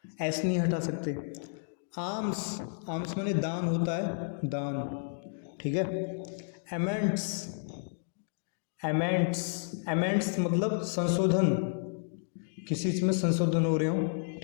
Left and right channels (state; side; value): silent; right; digital silence